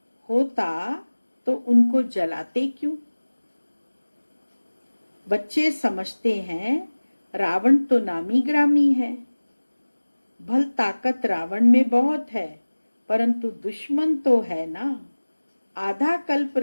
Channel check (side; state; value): both; inverted; correlation -1.00